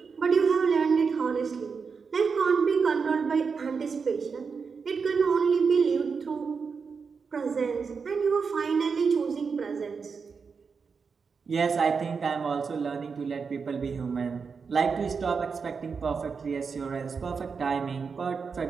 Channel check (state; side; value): quieter; left; 5.5 dB